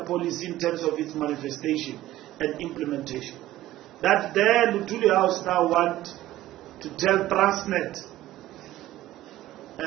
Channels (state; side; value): quieter; left; 15.1 dB